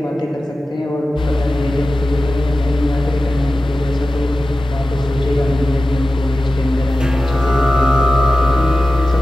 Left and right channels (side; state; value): both; normal; correlation 0.94